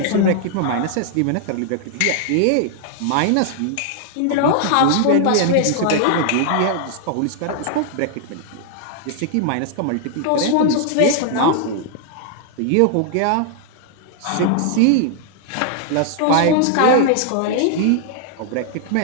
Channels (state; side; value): different; both; correlation 0.00